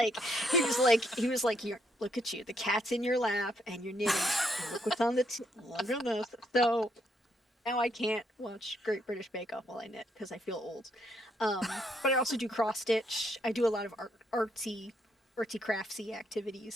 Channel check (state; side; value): normal; both; correlation 0.73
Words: "Here, look at you. The cat's in your lap, and you're knitting, and look what's on the look at this." So now I can't watch Great British Bake Off while I knit because I feel old. But I also do cross stitch. I do a lot of artsy craftsy activities.